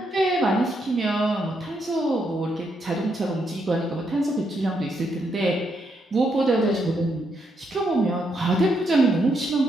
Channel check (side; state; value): both; normal; correlation 0.78